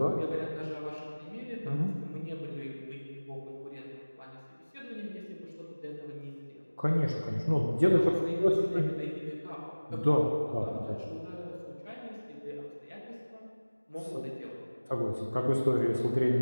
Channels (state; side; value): inverted; both; correlation -1.00